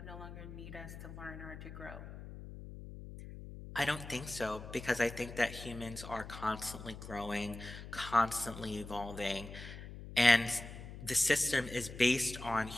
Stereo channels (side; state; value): left; noise; hum, 12 dB below the sound